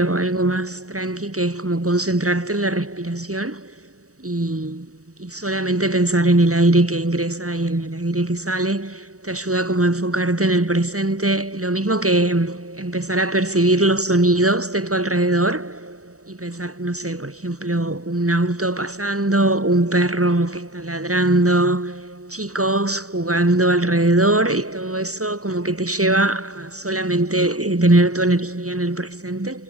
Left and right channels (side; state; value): left; late; 0.65 ms